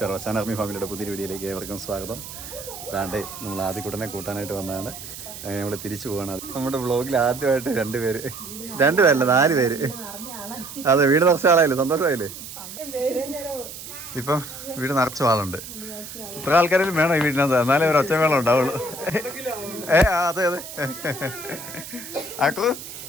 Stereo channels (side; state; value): right; noise; hiss, 12 dB below the sound